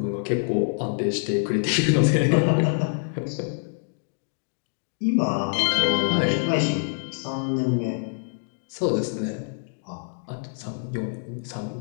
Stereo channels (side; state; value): right; silent; digital silence